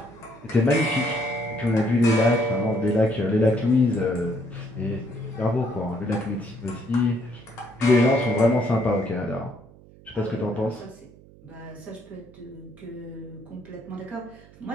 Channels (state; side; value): noise; right; hum, 23 dB below the sound